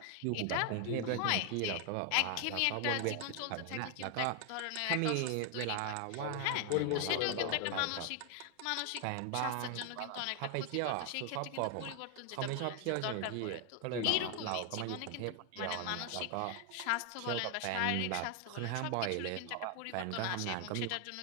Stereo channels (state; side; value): different; both; correlation 0.00